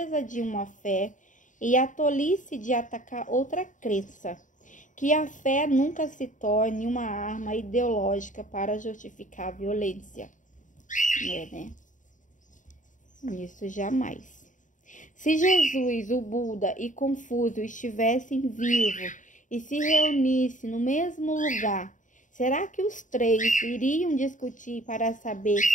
de uma fé e a tolice de atacar outra crença. Que a fé nunca se torne uma arma ideológica para justificar a violência. Né? Isso jamais. Se Jesus, o Buda e Confúcio estivessem vivos e se reunissem no mesmo lugar, será que os três iriam discutir para saber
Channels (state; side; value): late; right; 0.37 ms